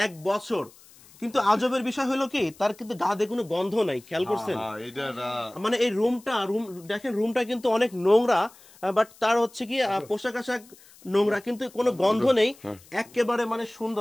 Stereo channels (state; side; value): noise; left; hiss, 25 dB below the sound